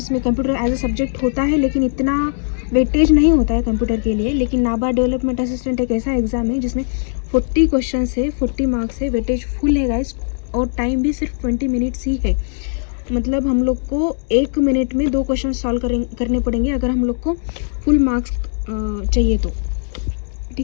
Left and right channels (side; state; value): right; silent; digital silence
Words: में कंप्यूटर एज ए सब्जेक्ट होता है, लेकिन इतना वेटेज नहीं होता है कंप्यूटर के लिए. लेकिन NABARD डेवलपमेंट असिस्टेंट एक ऐसा एग्ज़ाम है जिसमें 40 क्वेश्चंस है, 40 मार्क्स है, वेटेज फुल है गाइस, और टाइम भी सिर्फ 20 मिनट्स ही है. मतलब हम लोग को 1 मिनट में 2 क्वेश्चन सॉल्व करने पड़ेंगे अगर हम लोग को फुल मार्क्स चाहिए तो.